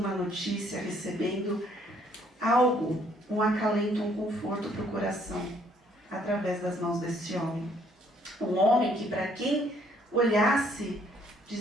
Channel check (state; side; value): normal; both; correlation 0.65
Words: notícia, recebendo algo, um acalento, um conforto para o coração, através das mãos desse homem. Um homem que, para quem olhasse,